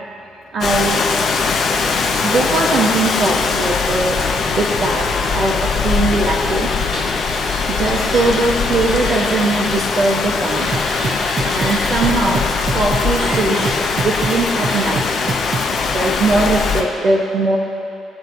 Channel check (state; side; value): normal; both; correlation 0.72